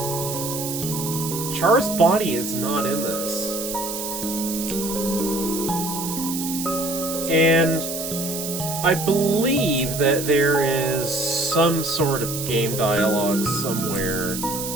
Char's body is not in this. And I believe that there is some sort of game dialogue somewhere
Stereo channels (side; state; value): right; noise; hiss, 6 dB below the sound